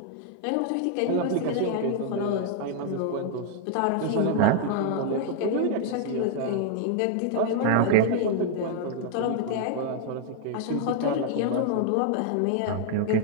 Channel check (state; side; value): different; both; correlation 0.00